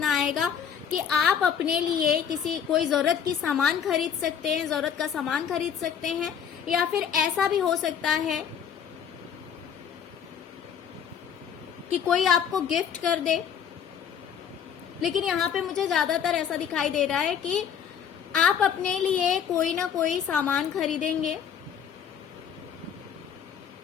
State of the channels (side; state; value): right; quieter; 8.0 dB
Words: आएगा कि आप अपने लिए कोई जरूरत की सामान खरीद सकते हैं, जरूरत का सामान खरीद सकते हैं। या फिर ऐसा भी हो सकता है कि कोई आपको गिफ्ट कर दे। लेकिन यहाँ पे मुझे ज्यादातर ऐसा दिखाई दे रहा है कि आप अपने लिए कोई ना कोई सामान खरीदेंगे,